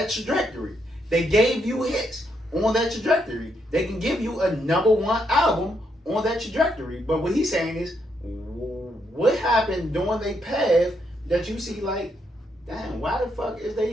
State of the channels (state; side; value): normal; both; correlation 0.77